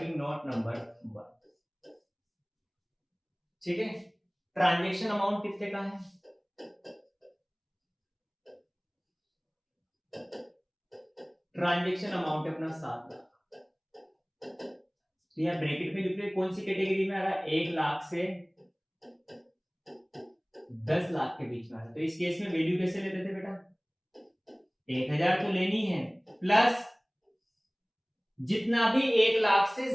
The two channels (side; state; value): both; identical; correlation 1.00